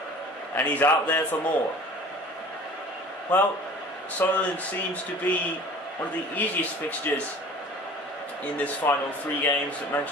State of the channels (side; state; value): both; normal; correlation 0.44